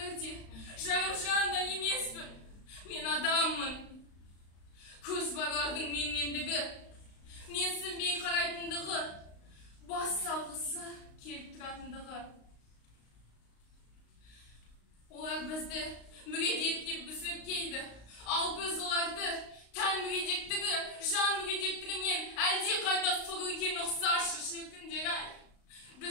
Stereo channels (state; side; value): late; right; 35 ms